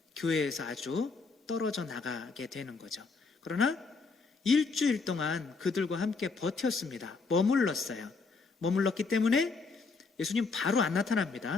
교회에서 아주 떨어져 나가게 되는 거죠. 그러나 일주일 동안 그들과 함께 버텼습니다. 머물렀기 때문에 예수님 바로 안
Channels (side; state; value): right; quieter; 4.4 dB